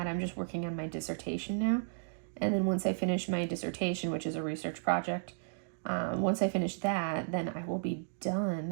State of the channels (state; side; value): silent; left; digital silence